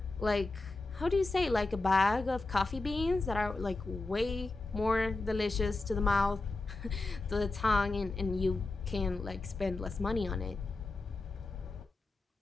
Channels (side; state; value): right; quieter; 3.3 dB